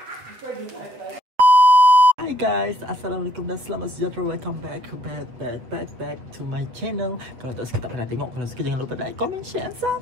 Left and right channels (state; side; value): late; left; 8.1 ms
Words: Hi guys, Assalamualaikum dan selamat sejahtera. Welcome back to my channel. Kalau tak suka tak pernah tengok, kalau suka jangan lupa like, comment, share,